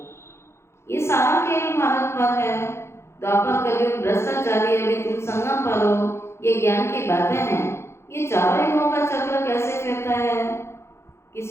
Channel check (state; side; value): late; right; 0.13 ms